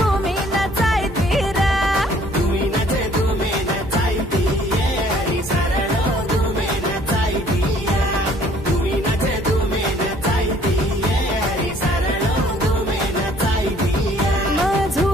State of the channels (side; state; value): both; normal; correlation 0.59